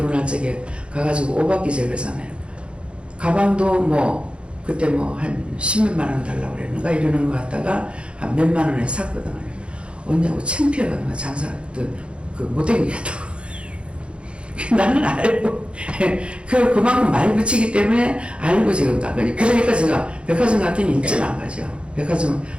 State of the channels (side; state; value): left; late; 0.058 ms